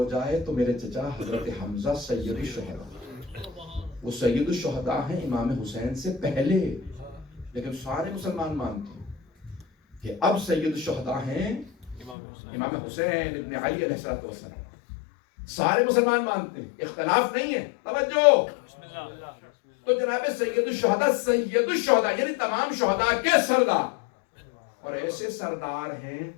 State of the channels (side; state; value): right; drops out; at 12.2 s